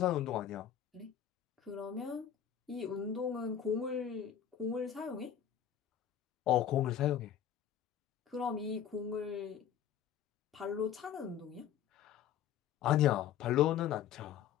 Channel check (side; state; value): right; quieter; 9.5 dB